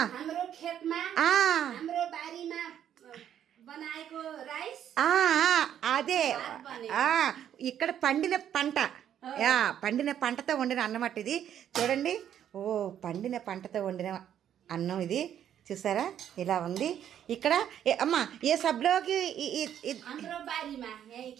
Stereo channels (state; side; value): quieter; left; 10.0 dB